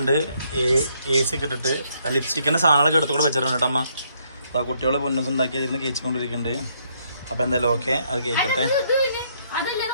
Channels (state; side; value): inverted; both; correlation -0.71